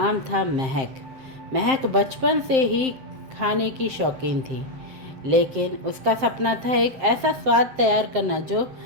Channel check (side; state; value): left; late; 7.6 ms